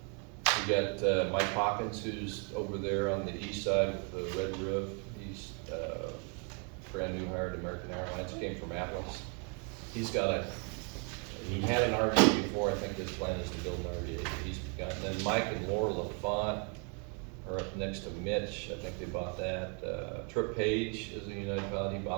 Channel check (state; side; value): quieter; left; 37.5 dB